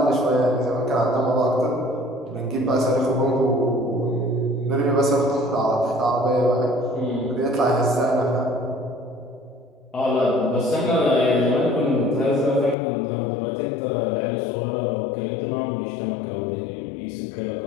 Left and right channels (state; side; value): drops out; right; at 12.8 s